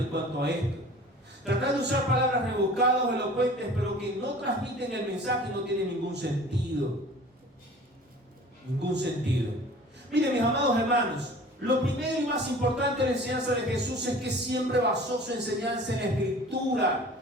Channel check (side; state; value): both; normal; correlation 0.45